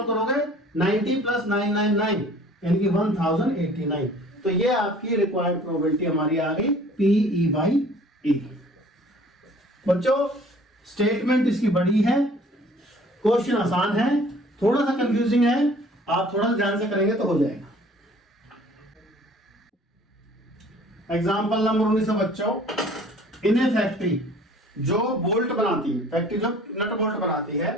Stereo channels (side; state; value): both; normal; correlation 0.51